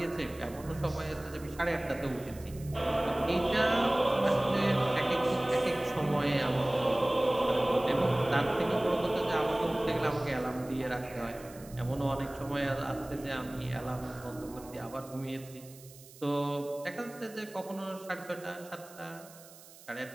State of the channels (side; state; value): right; noise; hiss, 20 dB below the sound